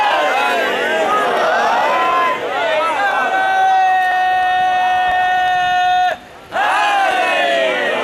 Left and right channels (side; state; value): both; identical; correlation 1.00